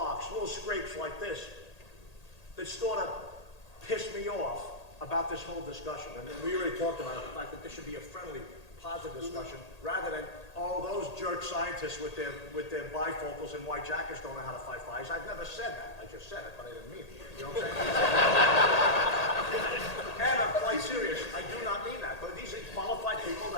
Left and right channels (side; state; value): right; late; 1.8 ms